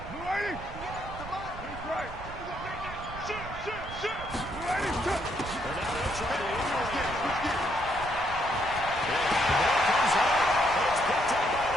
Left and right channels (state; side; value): noise; right; rumble, 12 dB below the sound